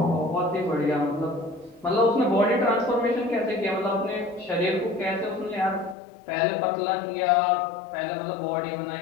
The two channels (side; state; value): right; drops out; at 6.0 s